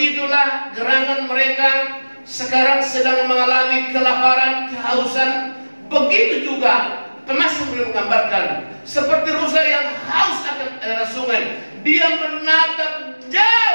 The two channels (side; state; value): both; inverted; correlation -1.00